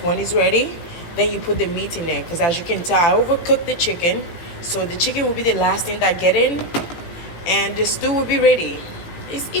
when it's ready, then you put the meat in there. Because as you can tell, I overcooked the chicken. So the chicken will be the last thing that get in. And the stew will be ready. It's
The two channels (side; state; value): right; late; 17 ms